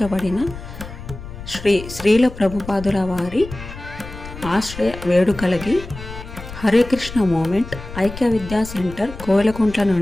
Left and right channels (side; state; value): left; noise; rumble, 13 dB below the sound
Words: శ్రీల ప్రభుపాదుల వారి ఆశ్రయ వేడుకలకి హరే కృష్ణ మూమెంట్ ఐక్య విద్యా సెంటర్ కోవెలకుంట్ల